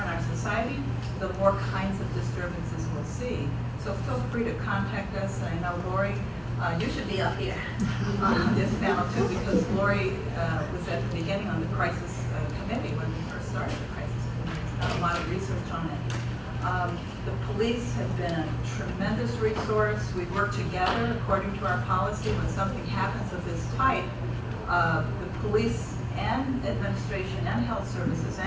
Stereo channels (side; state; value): both; identical; correlation 1.00